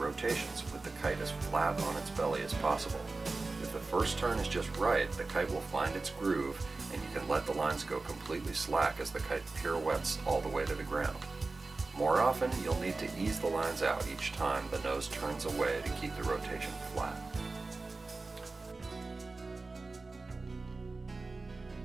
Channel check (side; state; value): left; quieter; 3.6 dB